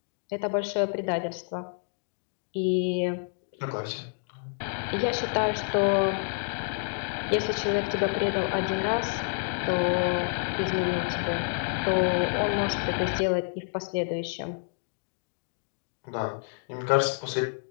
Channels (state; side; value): silent; right; digital silence